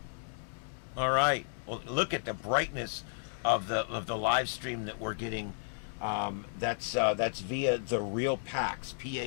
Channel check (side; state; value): right; silent; digital silence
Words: All right. Well, look at the brightness of the live stream that we're getting. That's via the Real Pax,